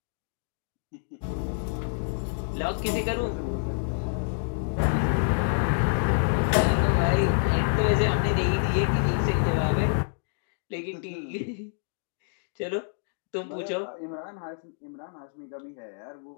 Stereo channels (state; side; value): silent; right; digital silence